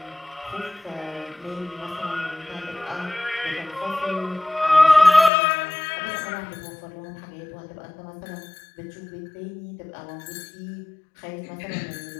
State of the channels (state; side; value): drops out; right; at 5.3 s